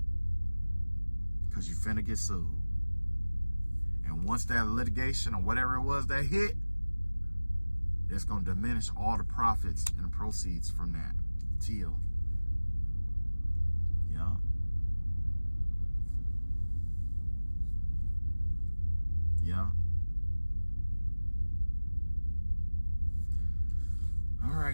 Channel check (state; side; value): inverted; both; correlation -1.00